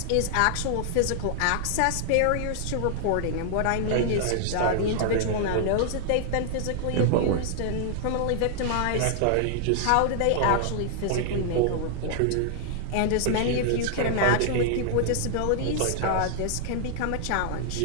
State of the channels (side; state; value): both; different; correlation -0.01